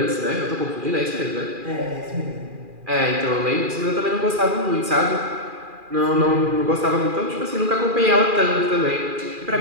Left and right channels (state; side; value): late; left; 2.4 ms